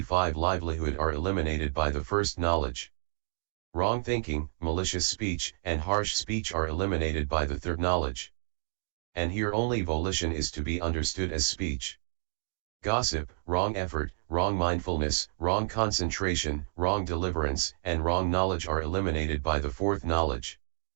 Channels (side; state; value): left; silent; digital silence